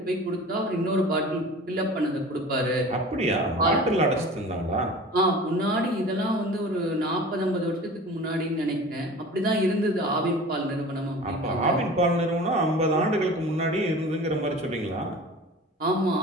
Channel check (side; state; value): both; normal; correlation 0.39